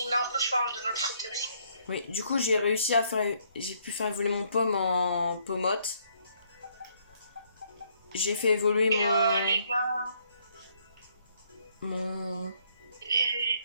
a un peu farm de notre côté aussi. Oui, du coup j'ai réussi à faire... J'ai pu faire évoluer mon pomme en Pomote. J'ai fait évoluer Et mon... les gars... Mon... Et...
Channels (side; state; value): both; inverted; correlation -0.69